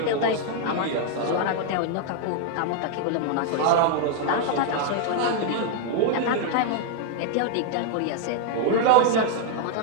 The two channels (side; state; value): both; different; correlation 0.00